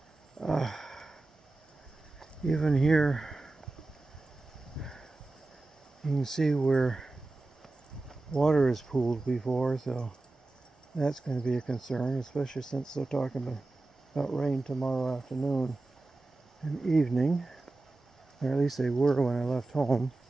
even here you can see where water is pooled before, so that's going to be a concern, especially since they're talking about rain tomorrow afternoon and evening, or at least they were when I left home.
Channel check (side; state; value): left; quieter; 3.1 dB